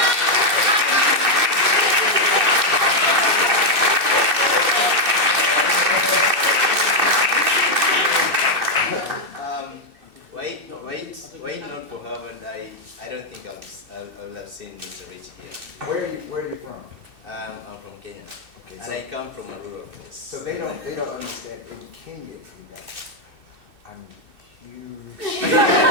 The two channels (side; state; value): left; late; 2.6 ms